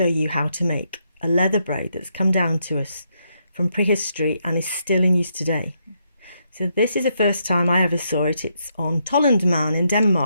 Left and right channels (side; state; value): both; inverted; correlation -0.78